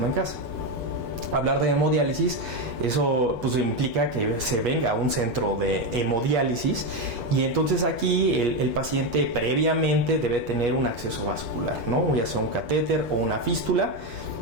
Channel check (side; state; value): left; late; 6.9 ms